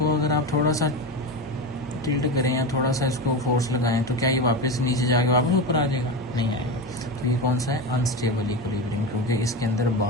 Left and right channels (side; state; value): both; normal; correlation 0.20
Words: अगर आप थोड़ा सा टिल्ट करें या थोड़ा सा इसको फोर्स लगाएं तो क्या ये वापस नीचे जाके वापस ऊपर आ जाएगा? नहीं आएगा। तो ये कौन सा है, अनस्टेबल इक्विलिब्रियम, क्योंकि इसके अंदर